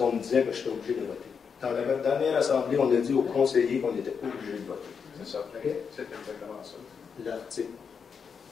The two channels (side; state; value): right; quieter; 6.3 dB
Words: me disait que j'étais obligé de voter. Dans la dernière assemblée, on a dit aux conseillers qu'on n'était pas obligé de voter. C'est ça. Okay. C'est exactement ça.